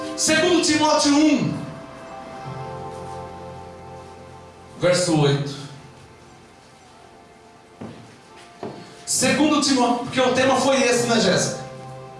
Segundo Timóteo 1, verso 8. Segundo Timóteo, porque o tema foi esse, né, Jéssica?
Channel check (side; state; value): both; identical; correlation 1.00